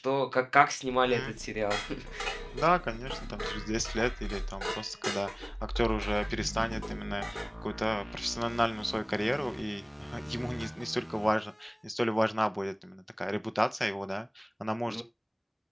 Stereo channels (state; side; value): identical; both; correlation 1.00